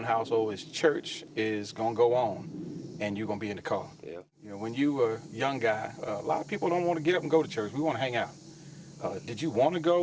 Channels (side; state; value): both; identical; correlation 1.00